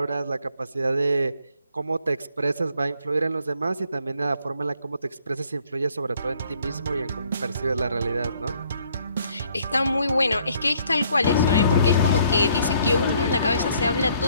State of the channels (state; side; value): inverted; both; correlation -0.65